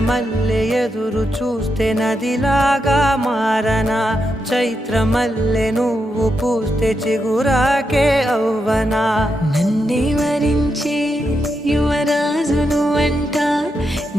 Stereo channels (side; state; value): both; normal; correlation 0.84